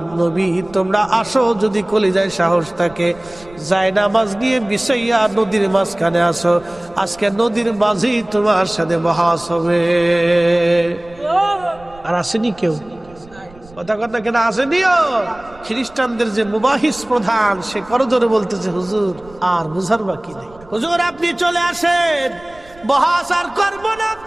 নবী। তোমরা আসো যদি কলিজায় সাহস থাকে, যাই নামাজ নিয়ে বিছাইয়া নদীর মাঝখানে আসো। আজকে নদীর মাঝেই তোমার সাথে বহাস হবে। আর আসেনি কেউ? কথা কথা কেন আসেনিও? খ্রিস্টানদের যে মুবাহিস প্রধান, সে করজোরে বলতেছে, হুজুর আর বুঝার বাকি নেই, হুজুর আপনি চলে আসেন, বহাস আর করবো না।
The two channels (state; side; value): noise; right; rumble, 23 dB below the sound